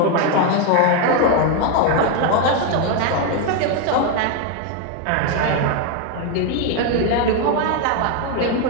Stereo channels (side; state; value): both; different; correlation 0.01